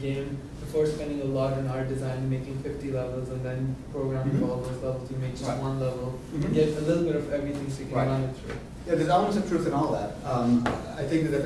before spending a lot on art design, making 50 levels and then programming for all those levels, you make just Right. one level, get a little bit of everything so you can Right. run it through. Yeah, there's elements of truth in all that. I think the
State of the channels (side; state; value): both; identical; correlation 1.00